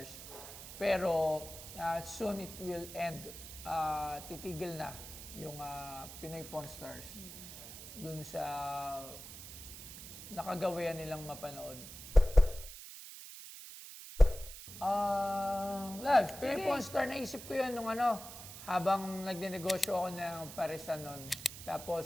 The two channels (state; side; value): noise; right; hiss, 12 dB below the sound